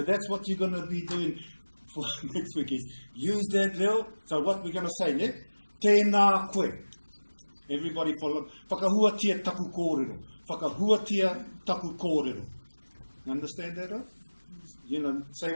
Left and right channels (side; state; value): both; inverted; correlation -1.00